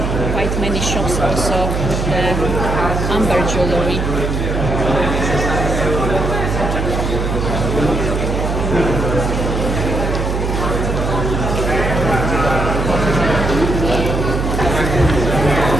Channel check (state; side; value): noise; right; hum, 1 dB below the sound